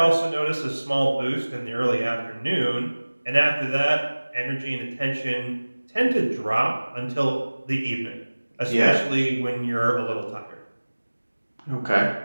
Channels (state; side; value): inverted; both; correlation -1.00